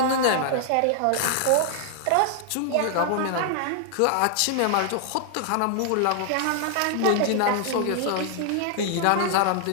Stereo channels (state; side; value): different; both; correlation 0.00